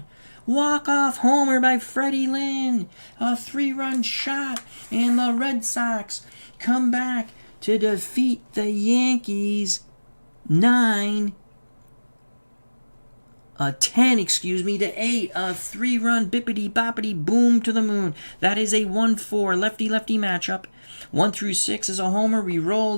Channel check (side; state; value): both; inverted; correlation -1.00